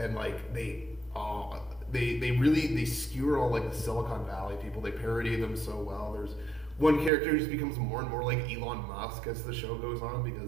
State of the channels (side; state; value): left; drops out; at 7.1 s